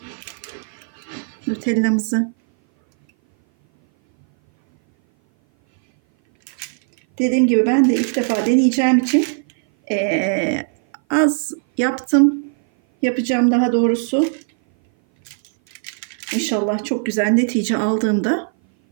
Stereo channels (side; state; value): left; silent; 58 dB below the other